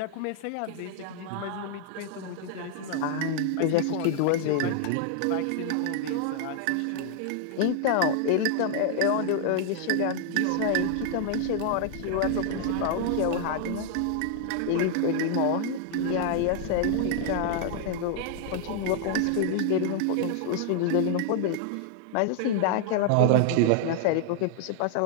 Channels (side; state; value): both; different; correlation -0.01